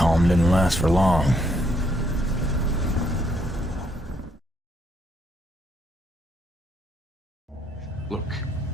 didn't last for long. Look,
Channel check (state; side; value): normal; both; correlation 0.73